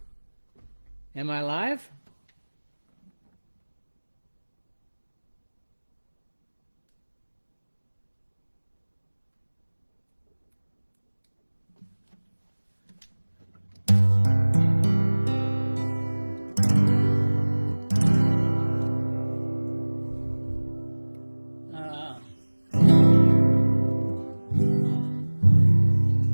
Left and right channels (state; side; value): inverted; both; correlation -1.00